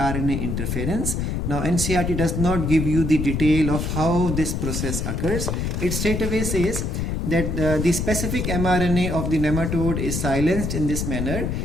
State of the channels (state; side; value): noise; left; rumble, 1 dB below the sound